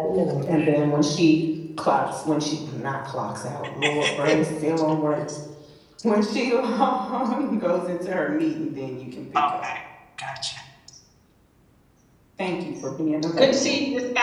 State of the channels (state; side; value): identical; both; correlation 1.00